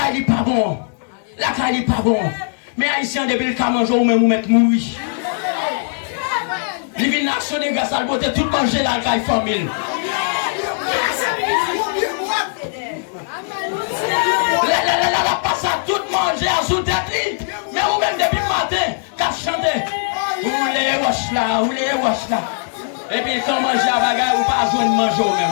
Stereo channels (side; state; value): right; silent; digital silence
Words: n'est pas bon. La caille n'est pas bon. Mais Haïtien depuis le cas manger ou même ou mettre mourir. Les villes nationales grâce à la beauté tout manger la caille famille. La passe à tout manger à sous tête. Mais ou même depuis le matin qu'à chanter. Ou les wash là. Et puis quand manger à bagarre ou pas joindre manger ou